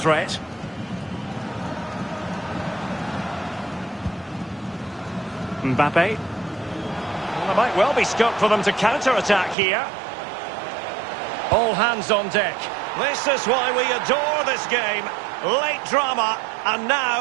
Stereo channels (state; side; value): drops out; left; at 9.6 s